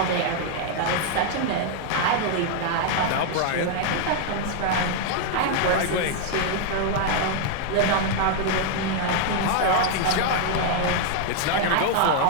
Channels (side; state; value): both; different; correlation 0.00